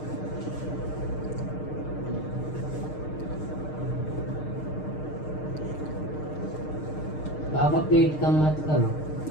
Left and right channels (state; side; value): late; right; 6.5 ms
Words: पापा पेट कम मत करो.